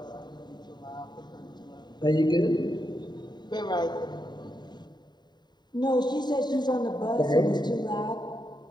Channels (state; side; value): late; right; 0.21 ms